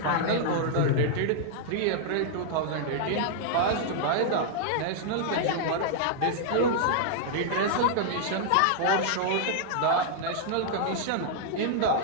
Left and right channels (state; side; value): different; both; correlation -0.01